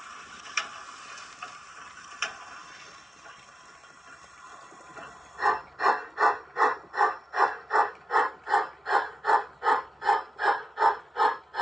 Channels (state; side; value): normal; both; correlation 0.94